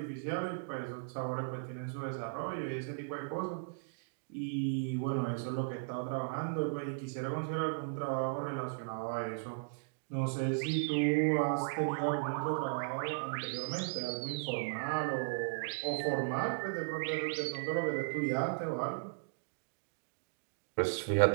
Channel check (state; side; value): silent; left; digital silence